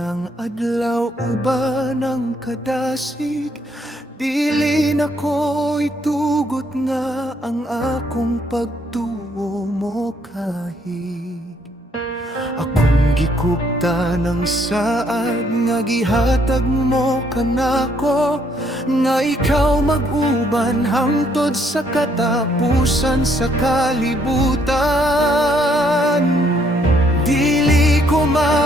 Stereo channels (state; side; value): normal; both; correlation 0.69